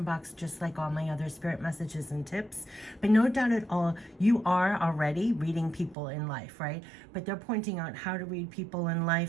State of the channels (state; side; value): drops out; left; at 6.0 s